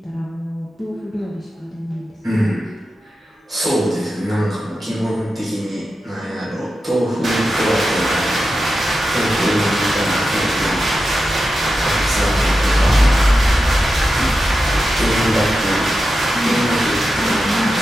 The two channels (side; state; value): both; normal; correlation 0.90